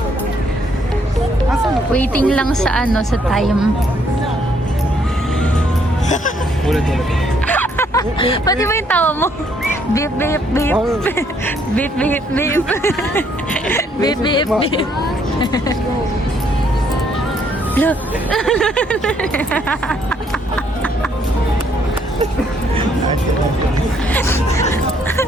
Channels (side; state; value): both; normal; correlation 0.69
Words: Waiting lang sa ano, sa time. Ulit. Pati ba yung tawa mo? Beep, beep, beep. Beep, beep, beep. Beep, beep, beep. Look.